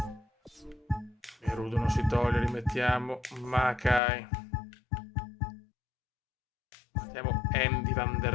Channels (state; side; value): drops out; right; at 4.0 s